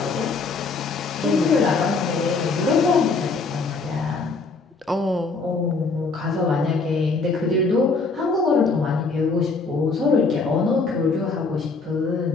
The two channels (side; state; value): right; quieter; 4.1 dB